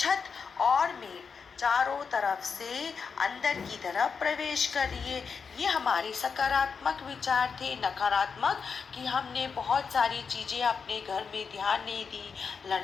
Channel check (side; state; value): right; quieter; 5.7 dB